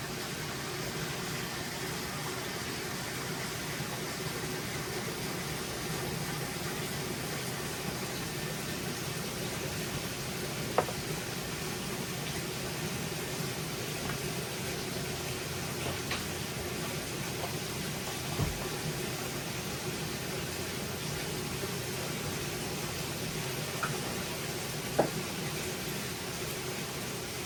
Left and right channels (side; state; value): both; identical; correlation 1.00